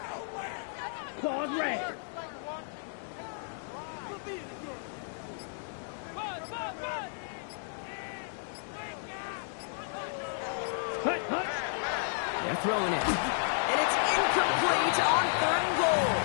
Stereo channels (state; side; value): silent; right; digital silence